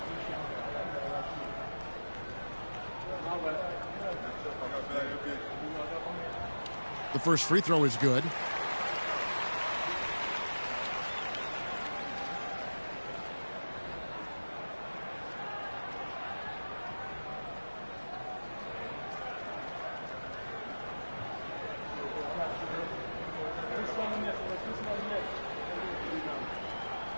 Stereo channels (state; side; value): inverted; both; correlation -1.00